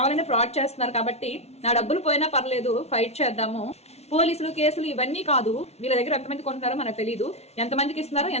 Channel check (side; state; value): right; late; 0.31 ms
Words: ఫ్రాడ్ చేస్తున్నారు కాబట్టి నా డబ్బులు పోయినా పర్లేదు, ఫైట్ చేద్దాము. పోలీసులు కేసులు ఇవన్నీ కాదు, వీళ్ళ దగ్గర ఎంతమంది కొంటున్నారో మనకు తెలియదు, ఎంతమందికి ఇస్తున్నారో